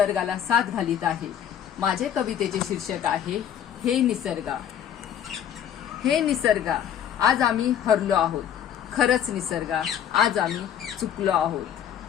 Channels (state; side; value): quieter; right; 9.6 dB